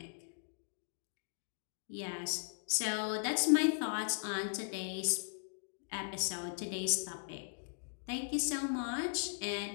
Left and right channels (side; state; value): right; silent; digital silence